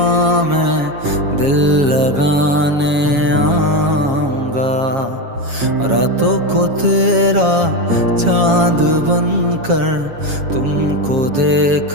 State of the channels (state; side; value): late; left; 7.3 ms